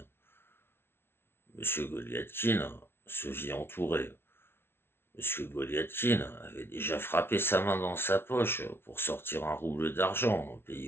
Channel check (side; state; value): right; late; 0.12 ms